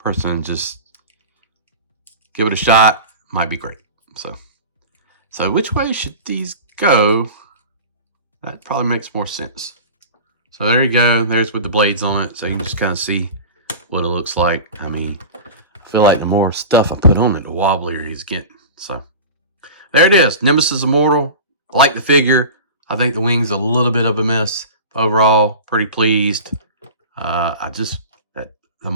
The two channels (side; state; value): both; inverted; correlation -0.33